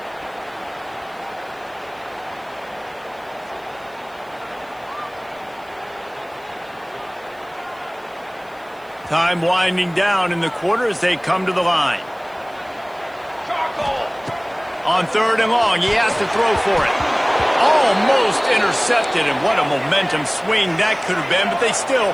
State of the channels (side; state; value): right; noise; hiss, 30 dB below the sound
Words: Time winding down in the quarter as they come to the line. On 3rd and long, he has to throw for it. Almost intercepted, and what a momentum swing that could have been, but they still